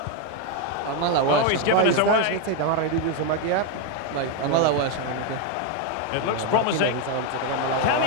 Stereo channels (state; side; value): different; both; correlation 0.01